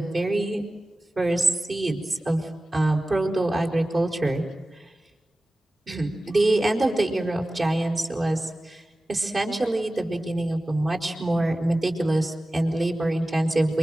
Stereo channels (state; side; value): normal; both; correlation 0.96